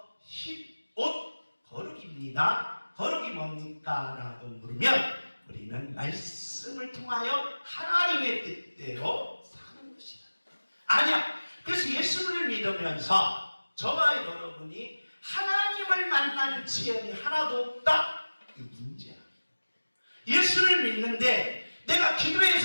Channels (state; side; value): inverted; both; correlation -1.00